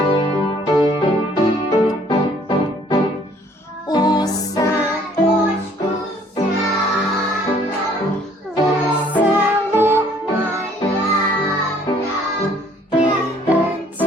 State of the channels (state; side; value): normal; both; correlation 0.60